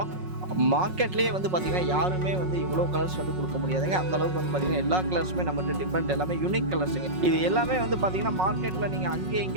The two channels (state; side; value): late; left; 5.4 ms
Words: மார்க்கெட்லேயே வந்து பார்த்தீங்கன்னா யாருமே வந்து இவ்வளோ கலர்ஸ் வந்து கொடுக்க முடியாதுங்க. அந்த அளவுக்கு வந்து பார்த்தீங்கன்னா எல்லா கலர்ஸுமே நம்மகிட்ட டிஃப்ரெண்ட், எல்லாமே யூனிக் கலர்ஸுங்க. இது எல்லாமே வந்து பார்த்தீங்கன்னா மார்க்கெட்டில் நீங்கள் அங்கேயும்